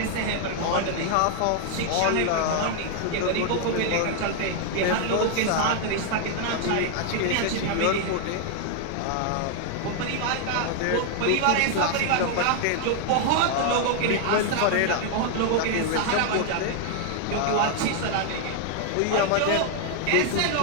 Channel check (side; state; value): both; different; correlation 0.00